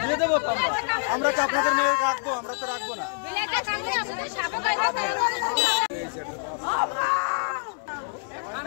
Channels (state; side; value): silent; right; digital silence